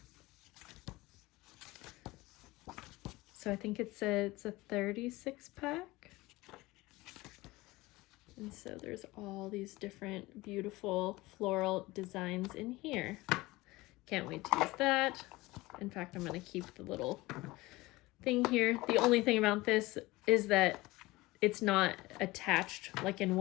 So I think it's a 36 pack. And so there's all these different beautiful floral designs in here. Can't wait to use that. In fact, I'm going to keep the little thing here. The only thing about this is that it's not attached like in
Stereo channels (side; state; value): right; quieter; 20.3 dB